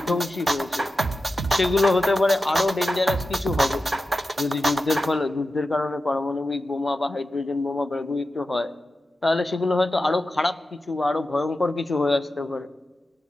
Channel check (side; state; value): both; normal; correlation 0.92